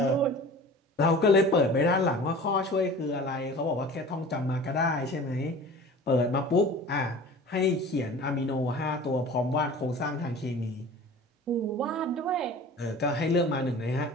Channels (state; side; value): normal; both; correlation 0.41